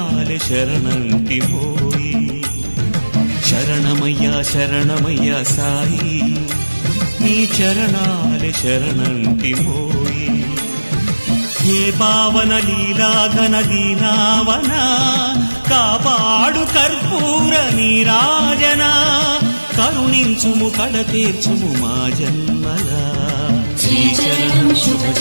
शरणंटिमोई शरणमय्या शरणमय्या साई नी चरणाले शरणंटिमोई हे पावन लीला घन दीनावना कापाडु कर्पूर नीराजना करुणिंचुमु कड़तीर्चुमु मा जन्मला श्रीचरणं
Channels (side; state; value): both; inverted; correlation -1.00